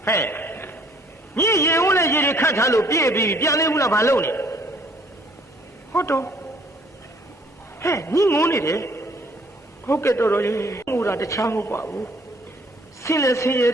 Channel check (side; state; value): both; normal; correlation 0.60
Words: ဟဲ့ညီရေဦးနဲ့ရေတွေခတ်ထားလို့ပြည့်ပြီးပြန်လေးဘူးလားဘာလုပ်နေဟုတ်တော့ဟဲ့ညီငုံနေတယ်ဟုတ်ကဲ့တော်ရေငိုတာတခြားမဟုတ်ပါဘူးဆင်းလဲဆင်းရဲ